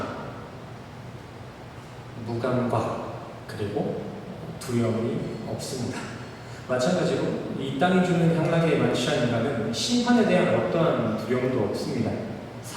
무감각 그리고 두려움이 없습니다. 마찬가지로 이 땅이 주는 향락에 만취한 인간은 심판에 대한 어떠한 두려움도 없습니다.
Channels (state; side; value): identical; both; correlation 1.00